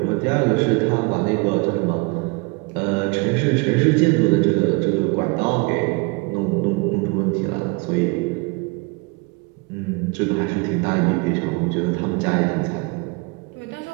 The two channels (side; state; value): left; quieter; 28.6 dB